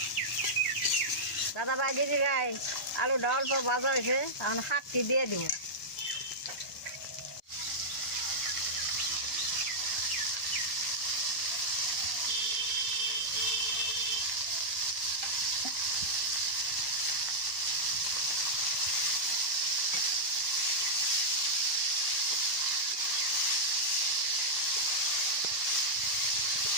দাদা ভাই দিদি ভাই আলুটা অল্প ভাজা হয়েছে এখন শাকটি দিয়ে দিব।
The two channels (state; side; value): normal; both; correlation -0.08